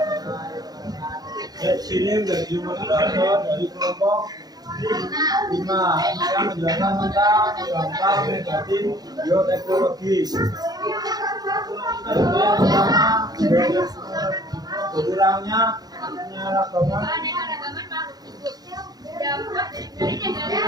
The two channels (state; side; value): late; left; 0.19 ms